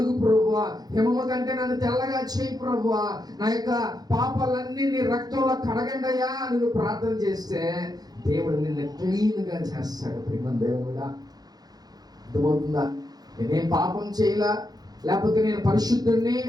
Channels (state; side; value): late; left; 0.19 ms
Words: ప్రభువా, హిమము కంటే నన్ను తెల్లగా చేయి ప్రభువా, నా యొక్క పాపాలన్నీ నీ రక్తంలో కడగండయ్యా అని నువ్వు ప్రార్థన చేస్తే దేవుడు నిన్ను క్లీన్గా చేస్తాడు. ప్రేమ దేవుడా. అర్థమవుతుందా? నేనేం పాపం చేయలా, లేకపోతే నేను పరిశుద్ధుడిని